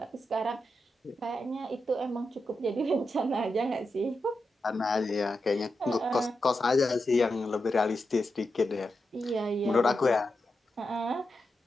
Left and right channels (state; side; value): normal; both; correlation 0.88